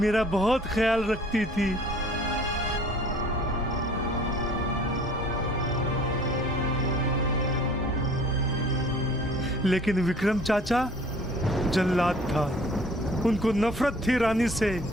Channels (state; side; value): normal; both; correlation 0.52